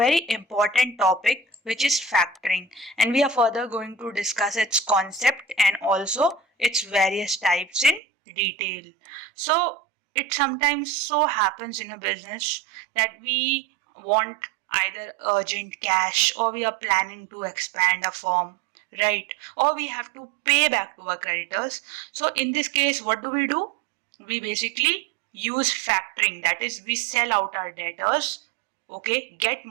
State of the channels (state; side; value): drops out; left; at 8.0 s